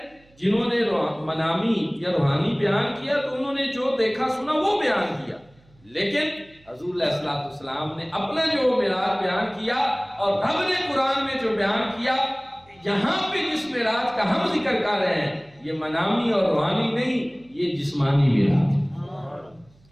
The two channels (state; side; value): noise; right; hum, 30 dB below the sound